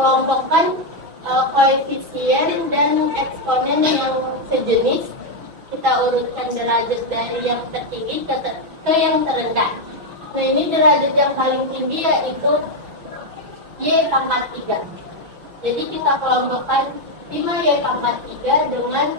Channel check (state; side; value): late; left; 6.1 ms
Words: koefisien dan eksponen yang sejenis. Kita urutkan derajat dari yang tertinggi ke yang terendah. Nah, ini derajat yang paling tinggi yaitu y pangkat 3. Jadi kita kelompokkan 5y pangkat 3 dengan